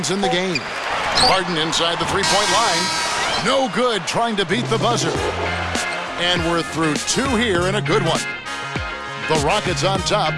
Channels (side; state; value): both; identical; correlation 1.00